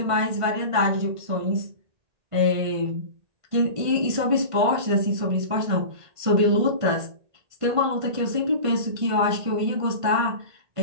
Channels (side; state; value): left; late; 1.5 ms